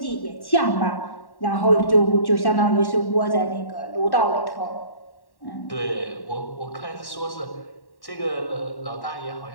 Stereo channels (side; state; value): right; late; 1.1 ms